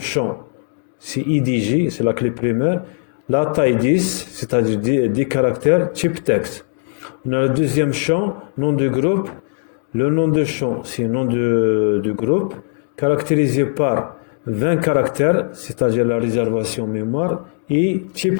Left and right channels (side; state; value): right; silent; digital silence